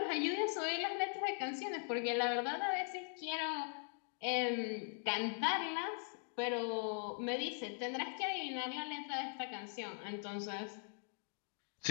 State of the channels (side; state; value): right; silent; 50 dB below the other